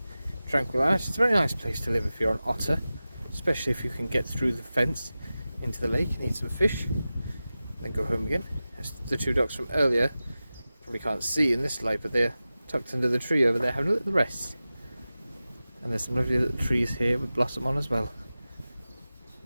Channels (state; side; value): inverted; both; correlation -0.95